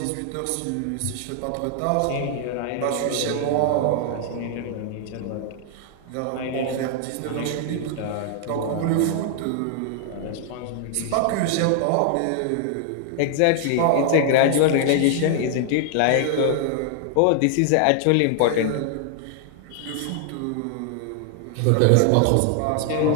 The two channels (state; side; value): different; both; correlation 0.00